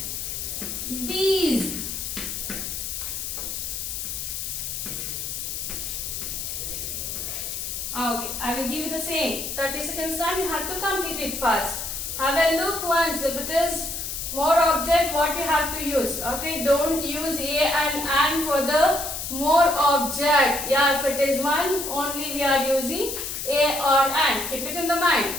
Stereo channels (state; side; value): noise; left; hiss, 5 dB below the sound